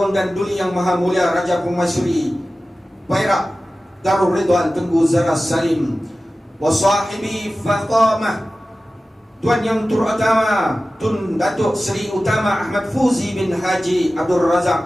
dan duli yang maha mulia Raja Permaisuri Perak Darul Ridwan Tengku Zara Salim. Wa sahibi Fatamah, tuan yang terutama Tun Datuk Seri Utama Ahmad Fuzi bin Haji Abdul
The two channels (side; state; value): both; normal; correlation 0.95